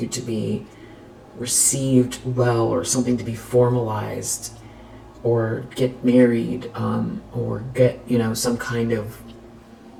to be received well, or something to be formalized, or get married, or get, you know, some kind of,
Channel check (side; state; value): both; identical; correlation 1.00